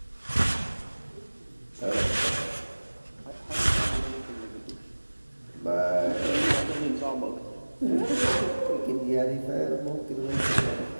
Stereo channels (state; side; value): inverted; both; correlation -1.00